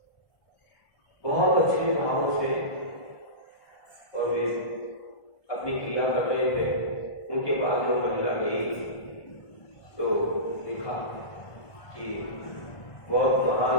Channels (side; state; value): right; late; 1.5 ms